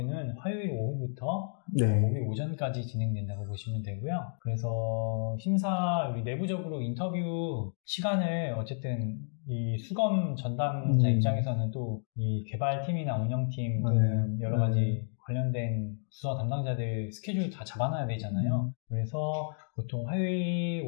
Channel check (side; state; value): right; silent; digital silence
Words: 화요일 오후부터 목요일 오전까지 진행된다고 보시면 되고요. 그래서 우리 내부적으로 인터뷰 시간을 어쨌든 이 수검 전담자 입장에서는 또 이 개발팀이나 운영팀 또는 여러 가지 관련된 부서 담당자들 스케줄 다 잡아놔야 되잖아요. 그래서 보통 화요일